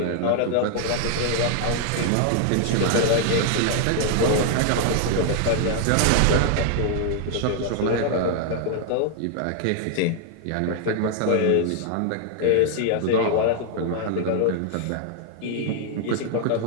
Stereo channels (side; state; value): both; different; correlation 0.00